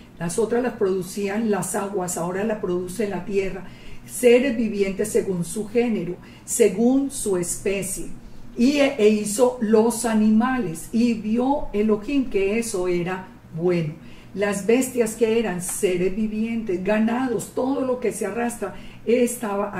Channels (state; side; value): identical; both; correlation 1.00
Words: las otras las producían las aguas, ahora la produce la tierra, seres vivientes según su género, según su especie. E hizo los animales, y vio Elohim que eso era bueno. Las bestias que eran seres vivientes, ganados, todo lo que se arrastra,